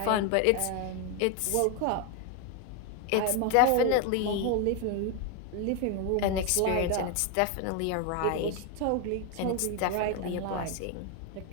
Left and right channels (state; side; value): different; both; correlation 0.01